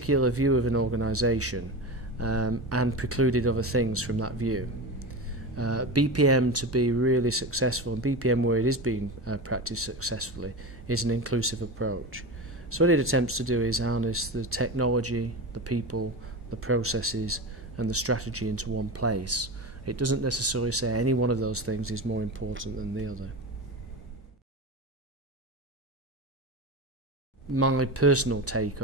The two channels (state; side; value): normal; both; correlation 0.24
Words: view of an organisation and precluded other things from that view. BPM, to be really successful, and BPM where it is being practiced successfully, is an inclusive approach. So what it attempts to do is harness the technology, the people, the processes and the strategy into one place. It doesn't necessarily say any one of those things is more important than the other. My personal take